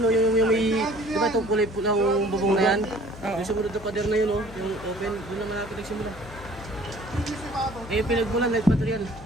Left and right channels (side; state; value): left; noise; hum, 16 dB below the sound